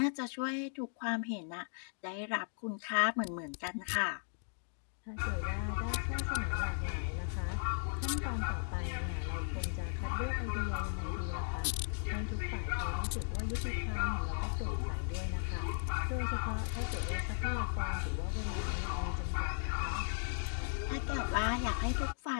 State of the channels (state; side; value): silent; right; digital silence